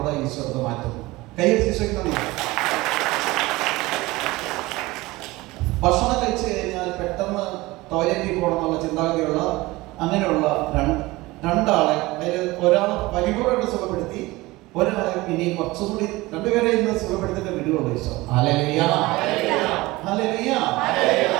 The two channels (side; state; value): left; quieter; 20.5 dB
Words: ഈശോ മാറ്റുന്നു. കൈയ്യടിച്ച് ഭക്ഷണം കഴിച്ചു കഴിഞ്ഞാൽ പെട്ടെന്ന് ടോയ്ലറ്റിൽ പോകണമെന്നുള്ള ചിന്താഗതിയുള്ള അങ്ങനെയുള്ള രണ്ടാളെ, അതിൽ ഒരാളെ പരിപൂർണ്ണമായിട്ട് സുഖപ്പെടുത്തി, ഒരാളെ ഇനി കുറച്ചുകൂടി, രണ്ടുപേരെ ഇന്ന് സുഖപ്പെടുത്തിട്ട് വിടുകയുള്ളൂ ഈശോ. ഹല്ലേലൂയ. ഹല്ലേലൂയ.